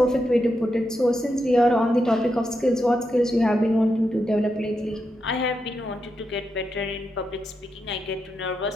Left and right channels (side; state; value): both; normal; correlation 0.85